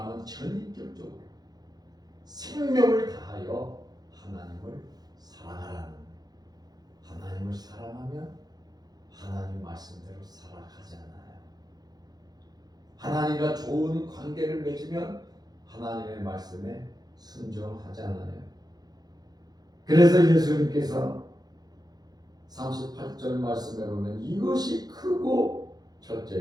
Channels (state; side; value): late; left; 0.19 ms